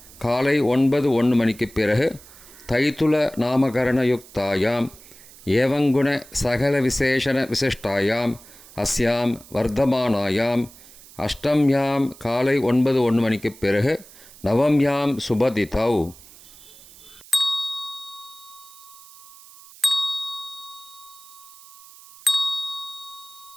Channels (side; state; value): right; noise; hiss, 21 dB below the sound